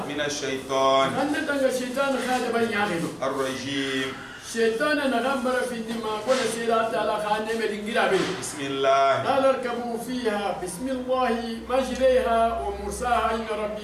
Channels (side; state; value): both; identical; correlation 1.00